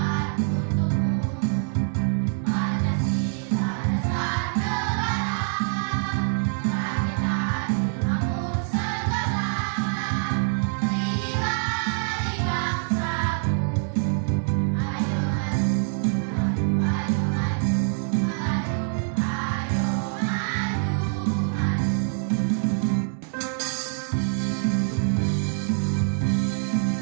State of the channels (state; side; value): silent; left; digital silence